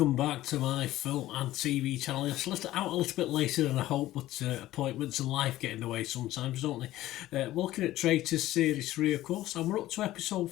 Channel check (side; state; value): right; quieter; 15.3 dB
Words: welcome back to my film and TV channel. It's out a little bit later than I hoped, but appointments and life get in the way sometimes, don't they? We're looking at Traitors Series 3, of course, and we're up to episode